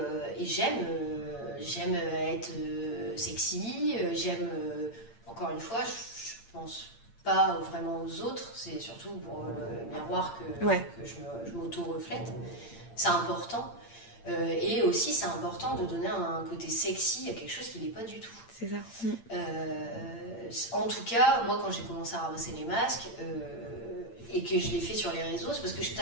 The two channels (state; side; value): late; right; 8.8 ms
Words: j'aime être sexy, j'aime, encore une fois, je pense pas vraiment aux autres, c'est surtout pour le miroir que je m'auto-reflète. C'est important. Et aussi, c'est important de donner un côté sexy à quelque chose qui n'est pas du tout. C'est ça. En tout cas, moi, quand j'ai commencé à ramasser les masques, et que je l'ai fait sur les réseaux, c'est parce que je